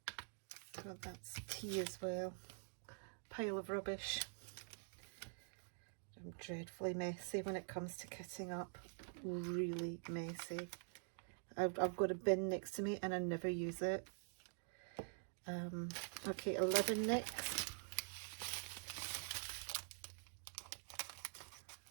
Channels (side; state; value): left; silent; digital silence